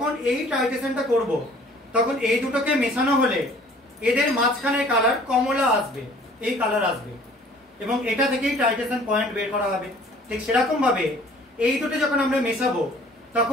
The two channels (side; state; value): both; normal; correlation 0.53